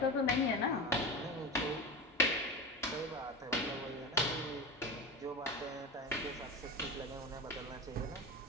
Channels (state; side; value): normal; both; correlation 0.26